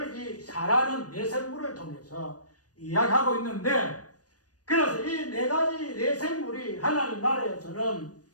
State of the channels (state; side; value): late; right; 0.68 ms